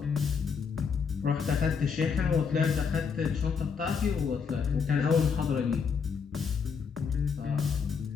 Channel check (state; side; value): quieter; right; 6.0 dB